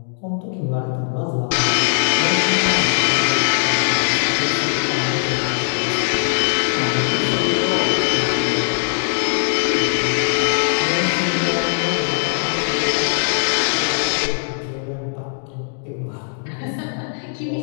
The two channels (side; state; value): right; silent; digital silence